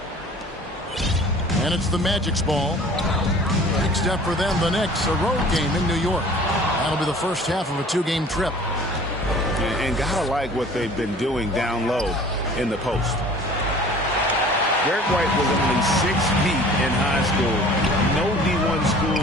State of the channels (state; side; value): normal; both; correlation 0.47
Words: And it's the Magic's ball. Next step for them, the Knicks, a road game in New York. That'll be the first half of a two-game trip. And gotta like what they've been doing down low in the post. Derek White was only 6 feet in high school. No D1